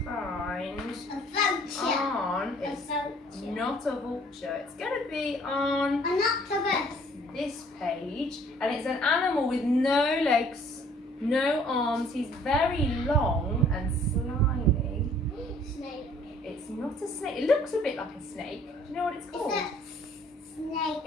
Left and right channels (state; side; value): normal; both; correlation 0.57